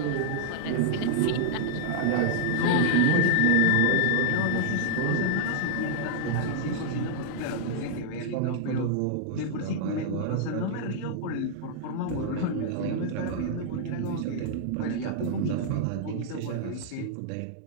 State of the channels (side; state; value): both; different; correlation -0.01